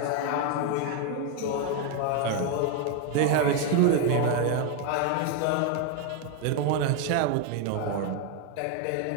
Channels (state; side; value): different; both; correlation 0.01